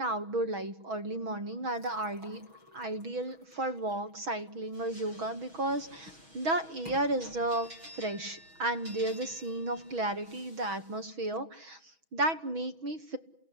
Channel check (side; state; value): left; late; 6.2 ms